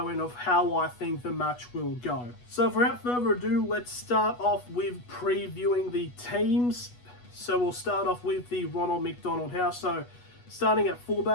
in of how I think the match will go. So without further ado, let's start off with previewing the teams. So we'll start off with the Ronald McDonald House. So starting at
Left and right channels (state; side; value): late; right; 8.2 ms